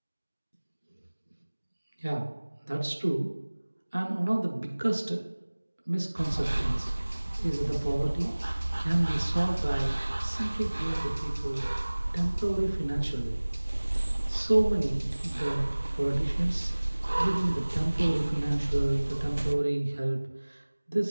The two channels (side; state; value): both; inverted; correlation -1.00